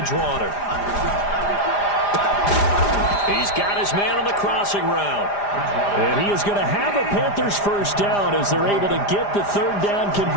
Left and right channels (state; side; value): late; right; 4.9 ms